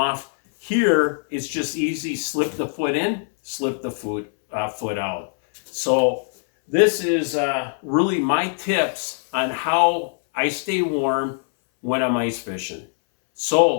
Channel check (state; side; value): silent; right; 64 dB below the other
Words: Here, it's just easy. Slip the foot in, slip the foot out. So this is really my tips on how I stay warm when I'm ice fishing.